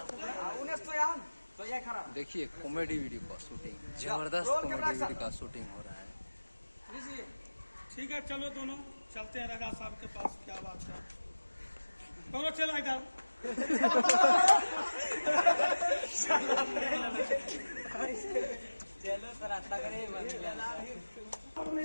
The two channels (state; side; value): inverted; both; correlation -1.00